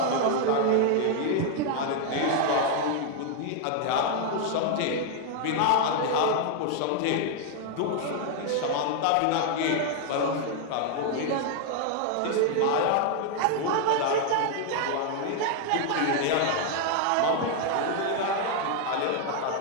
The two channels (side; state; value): both; different; correlation 0.00